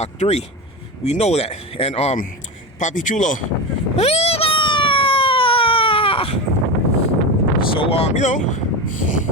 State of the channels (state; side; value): normal; both; correlation 0.21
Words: 3. We know that. And Papi Chulo. So